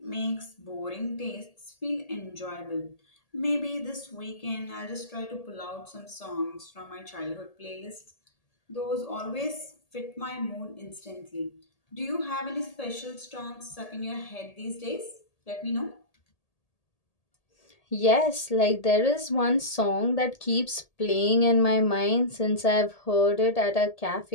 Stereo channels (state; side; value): late; right; 1.8 ms